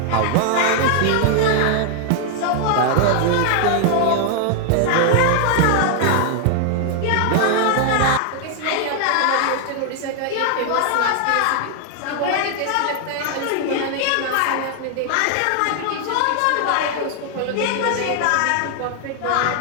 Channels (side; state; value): both; different; correlation 0.00